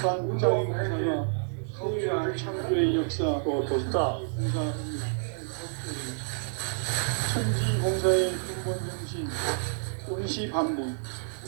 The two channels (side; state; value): left; silent; digital silence